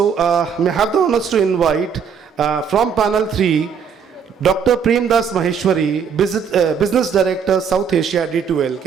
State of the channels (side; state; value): left; quieter; 6.8 dB